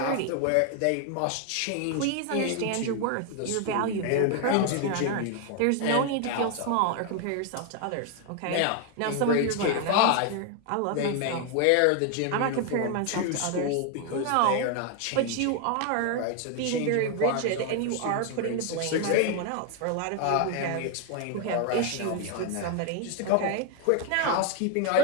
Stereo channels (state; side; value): different; both; correlation 0.01